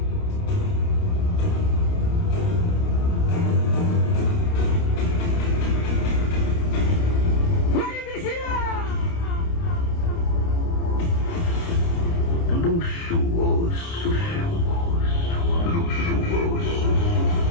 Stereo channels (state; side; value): late; right; 29 ms